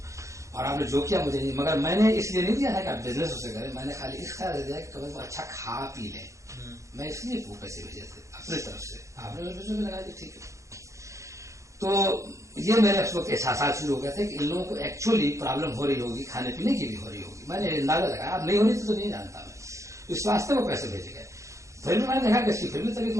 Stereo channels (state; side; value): late; left; 0.15 ms